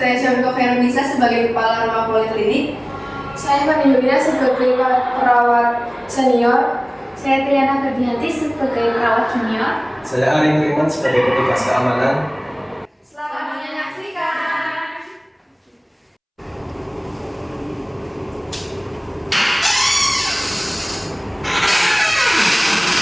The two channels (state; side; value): identical; both; correlation 1.00